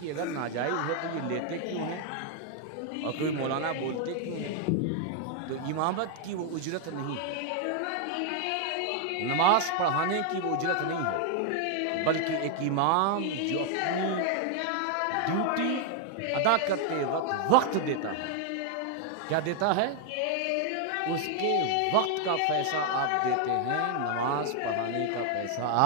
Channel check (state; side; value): different; both; correlation 0.00